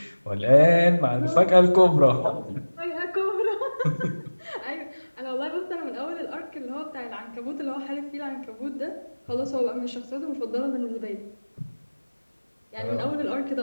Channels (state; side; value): inverted; both; correlation -1.00